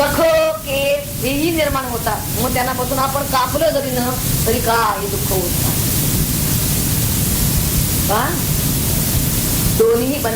केस हेही निर्माण होतात. मग त्यांनापासून आपण कापलं जरी न तरी काय दुःख होत नाही. दोन्ही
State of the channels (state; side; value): identical; both; correlation 1.00